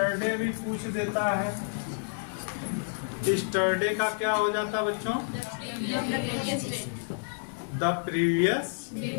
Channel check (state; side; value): silent; right; digital silence